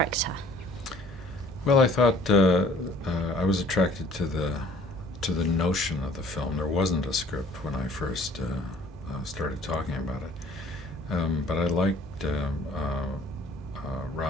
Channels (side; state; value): both; normal; correlation 0.55